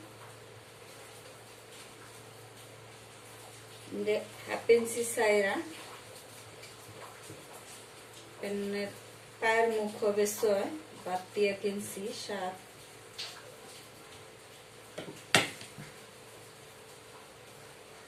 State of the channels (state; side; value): identical; both; correlation 1.00